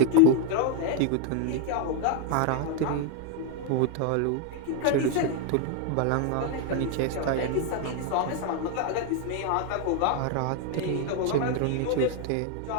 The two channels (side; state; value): both; different; correlation 0.01